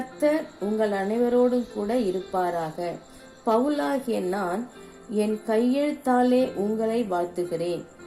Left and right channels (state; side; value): identical; both; correlation 1.00